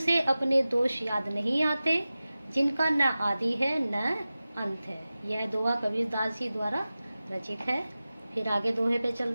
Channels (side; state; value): both; inverted; correlation -0.96